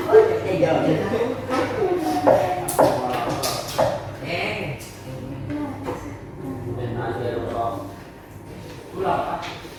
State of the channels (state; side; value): identical; both; correlation 1.00